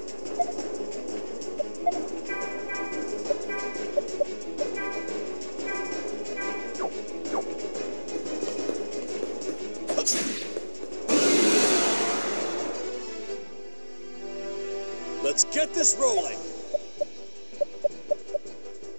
Let's get this rolling.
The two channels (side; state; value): both; inverted; correlation -1.00